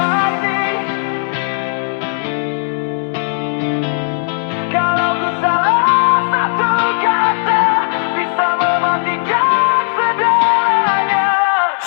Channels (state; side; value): silent; right; digital silence